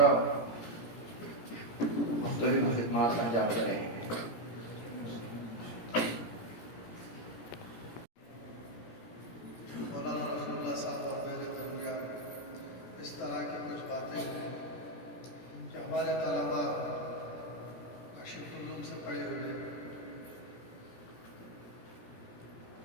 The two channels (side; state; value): right; late; 17 ms